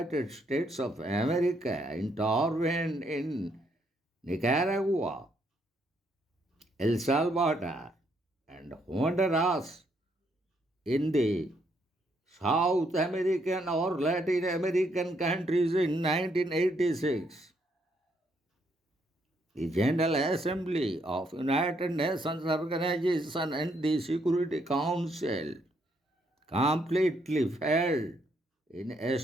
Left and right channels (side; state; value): both; normal; correlation 0.73